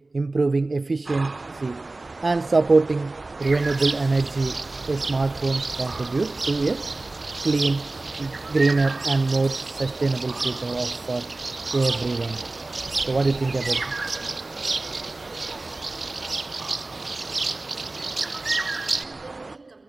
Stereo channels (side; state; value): left; quieter; 3.1 dB